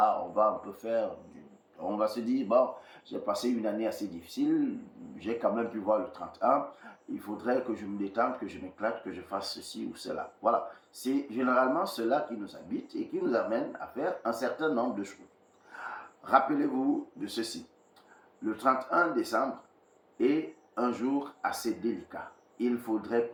on va un peu on va se dire, bon, j'ai passé une année assez difficile, j'ai quand même pu voir le 31, il faudrait que je me détende, que je m'éclate, que je fasse ceci ou cela. Voilà, c'est généralement cela qui nous habite et qui nous amène à faire un certain nombre de choses. Rappelez-vous de ceci. le 31 décembre est un jour assez délicat. Il faudrait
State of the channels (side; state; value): both; identical; correlation 1.00